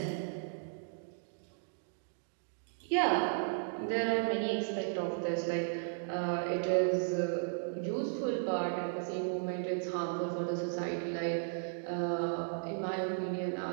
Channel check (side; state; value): left; silent; digital silence